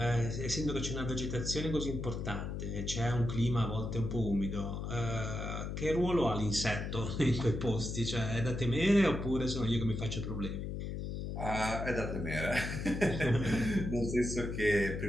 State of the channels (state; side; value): noise; left; hum, 4 dB below the sound